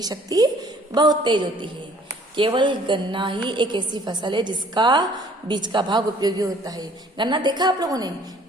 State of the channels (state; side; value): normal; both; correlation 0.56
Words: शक्ति बहुत तेज होती है. केवल गन्ना ही एक ऐसी फसल है जिसका बीज का भाग उपयोगी होता है. गन्ना देखा आप लोगों ने?